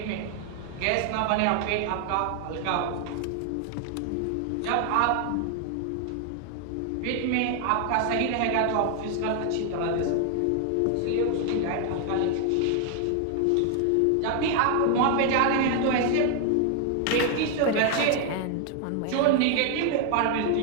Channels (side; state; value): both; different; correlation 0.00